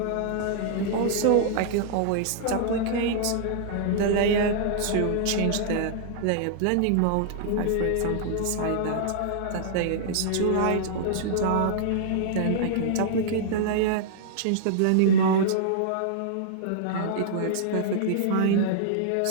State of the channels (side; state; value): both; different; correlation -0.01